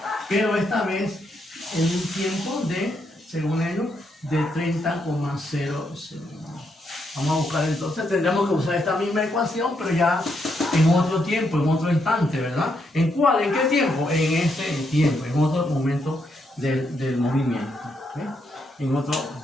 pero esta vez en un tiempo de, según ellos, de 30,0 segundos. Vamos a buscar entonces, tendremos que usar esta misma ecuación, pero ya en otro tiempo, en otro instante, ¿verdad? ¿En cuál? ¿En qué tiempo? En ese tiempo, en otro momento del movimiento. ¿Okay? En otro,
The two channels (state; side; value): normal; both; correlation 0.78